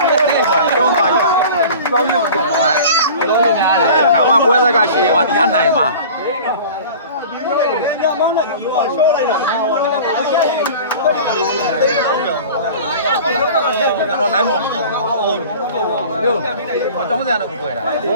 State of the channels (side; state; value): both; inverted; correlation -0.40